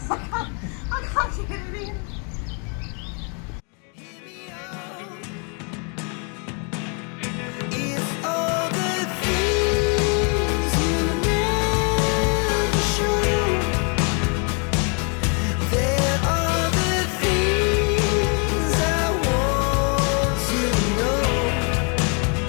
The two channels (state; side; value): quieter; right; 37.5 dB